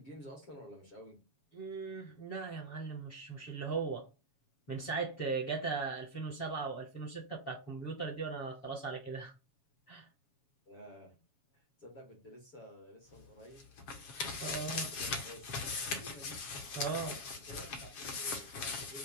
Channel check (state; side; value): late; right; 7.2 ms